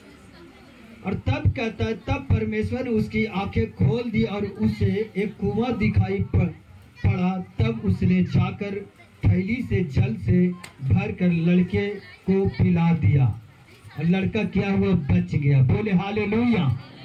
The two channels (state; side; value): identical; both; correlation 1.00